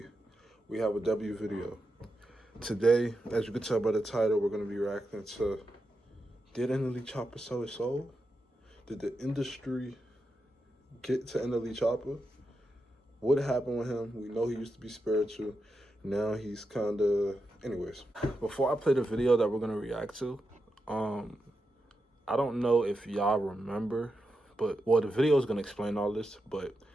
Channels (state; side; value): normal; both; correlation 0.87